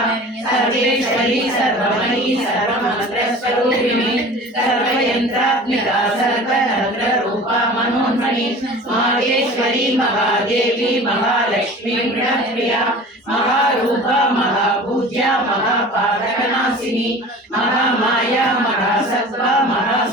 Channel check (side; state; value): both; normal; correlation 0.40